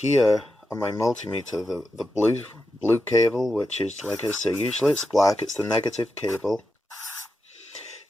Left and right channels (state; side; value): normal; both; correlation 0.88